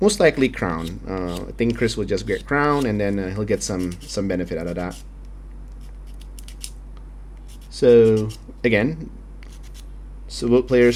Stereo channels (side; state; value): both; identical; correlation 1.00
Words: most likely crown. I think Chris will just get crown, and then he'll get some benefit out of that. So again, so both